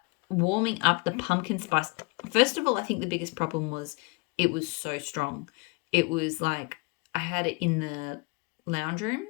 warming up the pumpkin spice, first of all, I think the biggest problem was it was so strong. It was like I had it in the lounge room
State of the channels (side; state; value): right; quieter; 28.2 dB